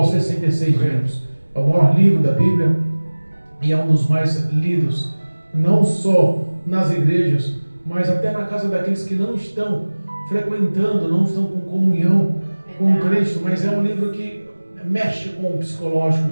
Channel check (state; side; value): inverted; both; correlation -1.00